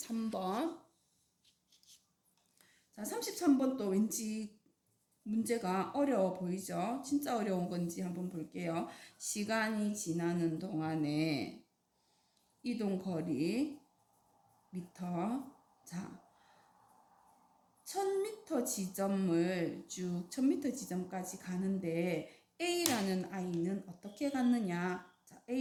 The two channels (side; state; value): both; identical; correlation 1.00